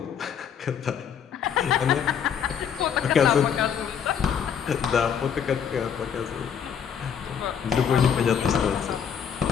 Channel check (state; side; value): quieter; right; 7.8 dB